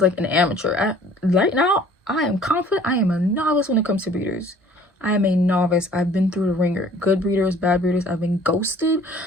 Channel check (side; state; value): both; normal; correlation 0.53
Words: like an amateur. Right now, I am confident. I am a novice when it comes to breeders. I am a novice. I've been through the ringer. Good breeders, bad breeders. I've been ghosted.